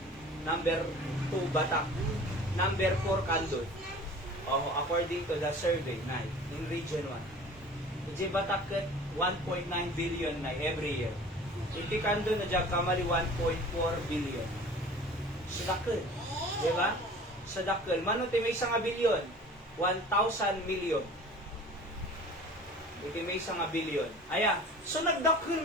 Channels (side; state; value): both; normal; correlation 0.44